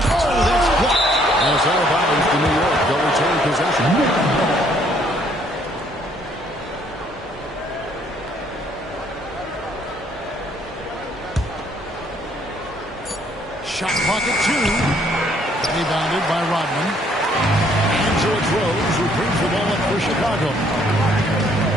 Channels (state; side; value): normal; both; correlation 0.65